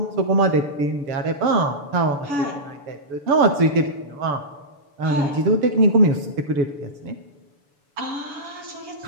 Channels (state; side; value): late; left; 6.9 ms